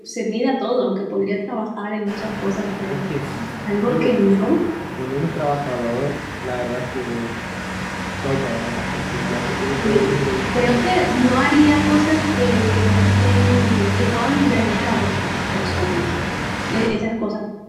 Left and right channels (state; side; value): identical; both; correlation 1.00